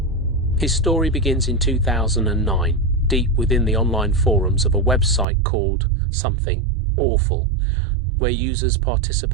His story begins in 2009, deep within the online forums of a website called Something Awful, where users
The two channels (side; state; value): left; drops out; at 5.2 s